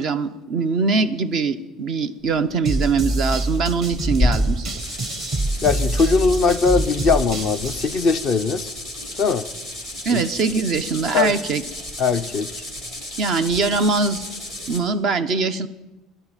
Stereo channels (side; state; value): both; normal; correlation 0.48